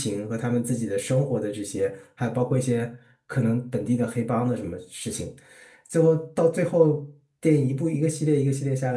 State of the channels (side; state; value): both; identical; correlation 1.00